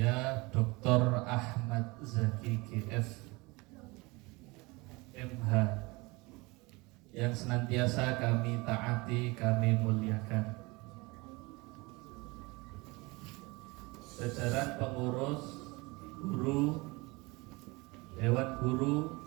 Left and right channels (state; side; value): quieter; left; 24.7 dB